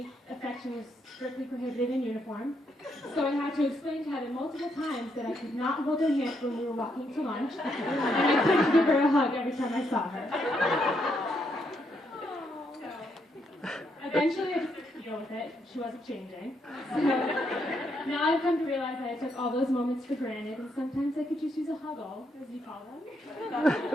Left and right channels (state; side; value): normal; both; correlation 0.76